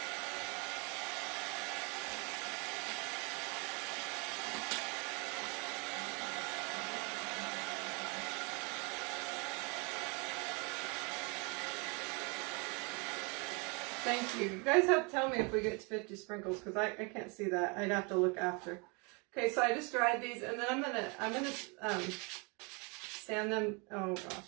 Thank you. You guys have to tell me if we get to 50 sprinkles because I can't see that. I'd have to look after. Okay, so I just dried these and then I'm gonna sand them. Oh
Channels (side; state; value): left; quieter; 31.4 dB